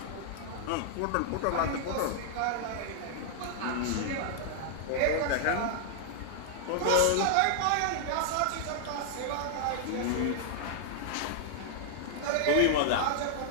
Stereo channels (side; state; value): both; different; correlation -0.01